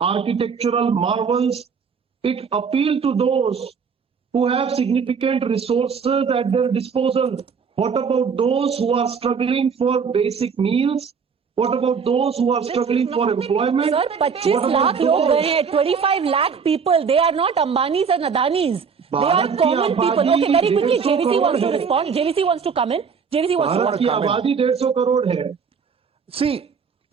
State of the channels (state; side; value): quieter; left; 6.1 dB